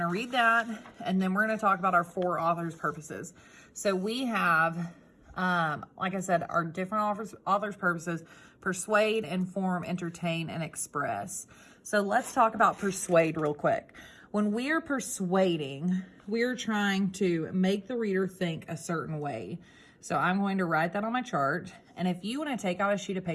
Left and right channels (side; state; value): both; identical; correlation 1.00